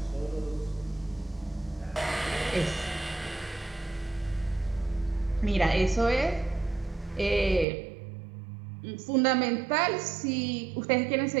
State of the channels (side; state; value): left; drops out; at 7.7 s